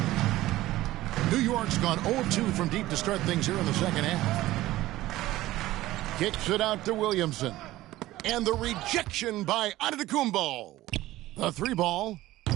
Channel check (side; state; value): left; quieter; 16.4 dB